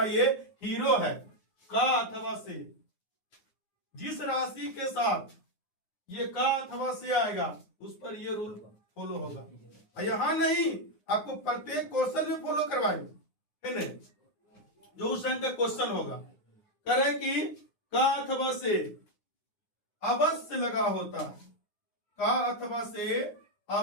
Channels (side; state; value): right; late; 9.6 ms